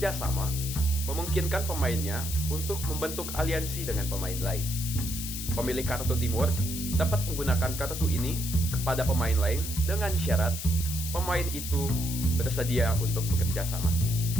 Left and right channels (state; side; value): noise; left; hiss, 6 dB below the sound